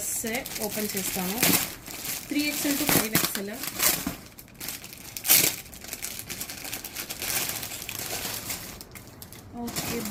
ఓపెన్ చేస్తాను. 3XL to 5XL. Okay,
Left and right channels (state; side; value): identical; both; correlation 1.00